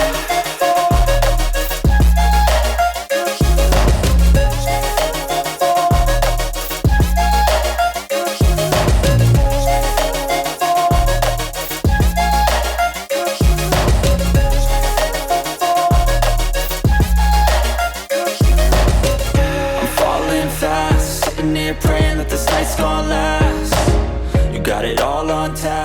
Praying that this night's gonna last. You got it all on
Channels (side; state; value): both; identical; correlation 1.00